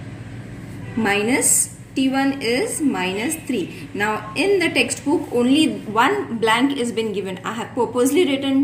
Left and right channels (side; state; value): both; identical; correlation 1.00